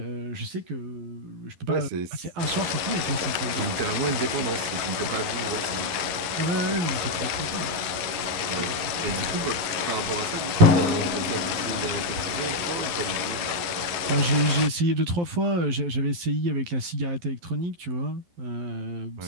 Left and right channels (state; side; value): late; left; 11 ms